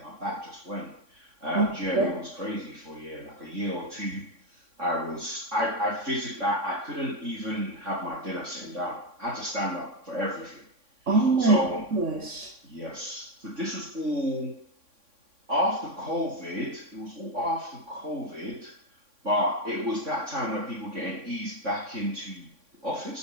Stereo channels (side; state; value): left; late; 3.6 ms